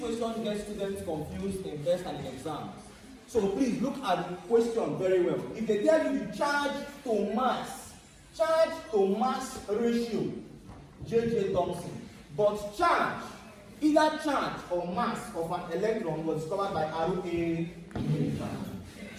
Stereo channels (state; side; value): identical; both; correlation 1.00